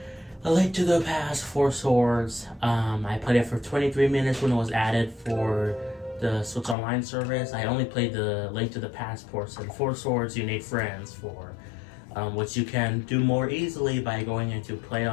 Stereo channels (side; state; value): right; drops out; at 6.8 s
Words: A Link to the Past, Four Swords. I played it for 23 minutes when it was added for the Switch Online service. I only played the Link to the Past portion. Four Swords, you need friends for, which you can do more easily by going into Play